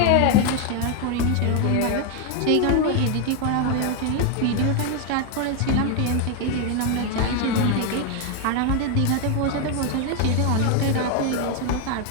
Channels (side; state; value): both; different; correlation 0.01